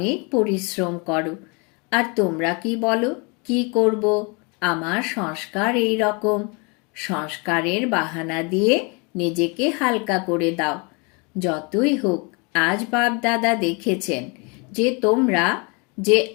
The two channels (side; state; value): right; quieter; 31.5 dB